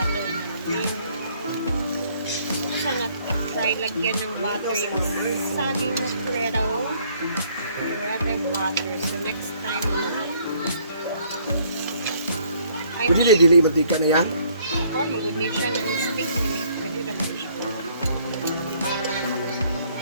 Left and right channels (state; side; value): inverted; both; correlation -0.63